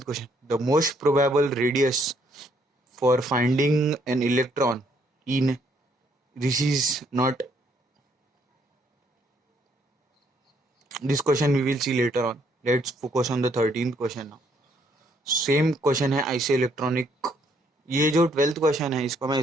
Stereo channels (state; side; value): normal; both; correlation 0.69